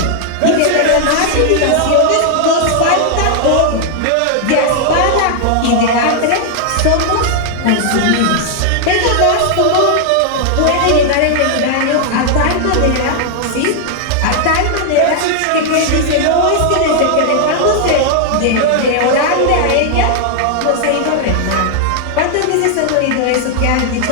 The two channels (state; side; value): different; both; correlation 0.00